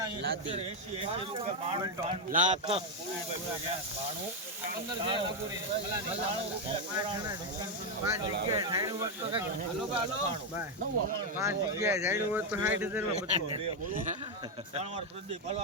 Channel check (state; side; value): normal; both; correlation 0.03